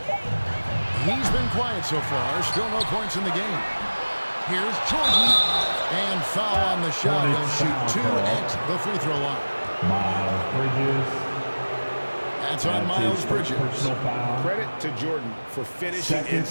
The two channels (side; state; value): both; inverted; correlation -1.00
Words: He's been quiet so far. Still no points in the game. Here's Jordan. And foul on the shot. He'll shoot 2 at the free throw line. Miles Bridges. That's on Miles Bridges. Credit to Jordan for finishing in